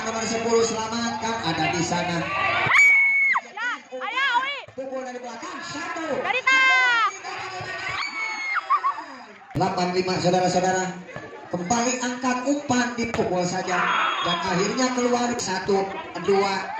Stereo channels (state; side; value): identical; both; correlation 1.00